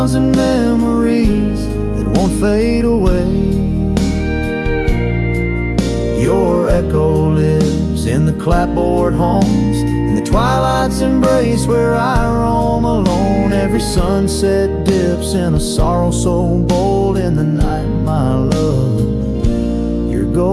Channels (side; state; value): both; identical; correlation 1.00